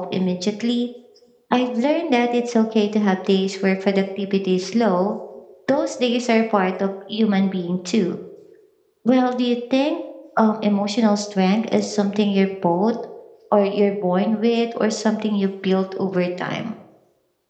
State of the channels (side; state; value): both; identical; correlation 1.00